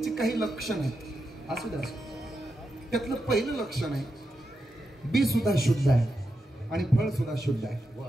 काही लक्षण आहेत, असू द्या. त्यातलं पहिलं लक्षण आहे बी सुद्धा शुद्ध आहे आणि फळ सुद्धा शुद्ध आहे.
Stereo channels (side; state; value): both; normal; correlation 0.87